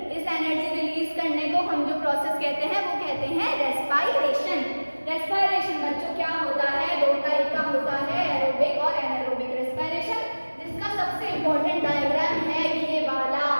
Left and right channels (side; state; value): both; inverted; correlation -1.00